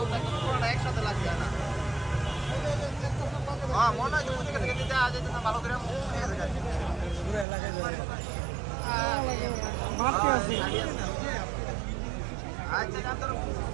একদম পুরোটা একসাথে লাগছে না। হ্যাঁ মনে হয় যে ওদিকে থেকে দিতে আজ যেতে ভালো করে পুরো এলাকায় আচ্ছা জানতো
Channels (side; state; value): left; drops out; at 7.5 s